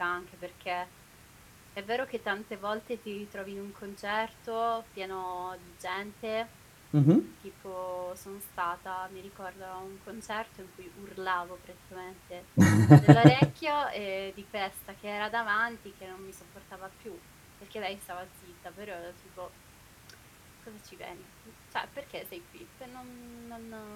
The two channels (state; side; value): identical; both; correlation 1.00